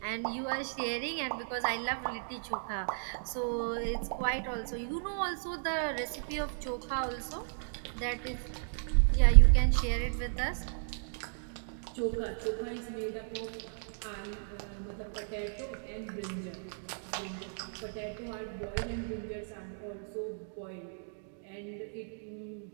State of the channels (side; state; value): left; silent; digital silence